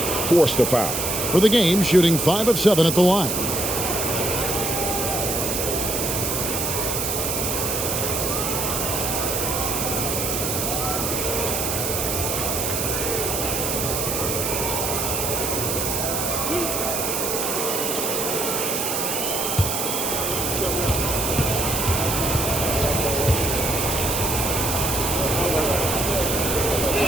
forced to foul. For the game, shooting 5 of 7 at the line.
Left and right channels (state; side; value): noise; right; hiss, 1 dB below the sound